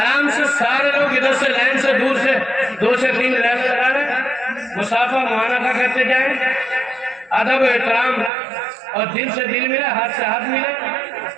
से सारे लोग इधर से लाइन से दूर से 2 से 3 लाइन लगा रहे, मुसाफा मुआनका करते जाए। अदब एहतराम और दिल से दिल मिला, हाथ से हाथ मिला।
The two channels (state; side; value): drops out; left; at 8.3 s